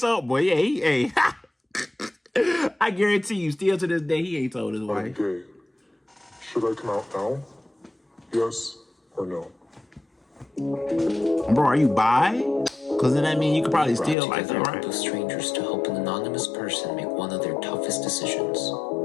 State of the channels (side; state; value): right; drops out; at 14.2 s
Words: up. Boy, yeah, hey. I guarantee you, still to this day, he ain't told his wife. I'm gay. Should I come out now? Yes or no? Bro, are you bi? Because then that means you could probably steal like that, right? Two strangers to help an anonymous person make one of their toughest decisions.